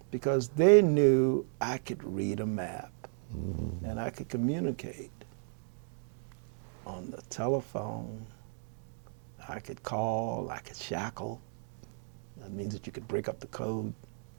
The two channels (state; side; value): silent; left; digital silence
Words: because they knew I could read a map and I could communicate on the telephone. I could call, I could shackle. That means that you could break up the code.